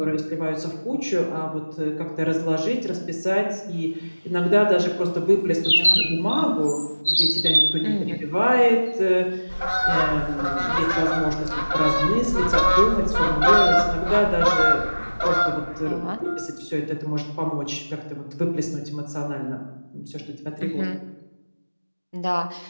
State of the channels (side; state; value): both; inverted; correlation -1.00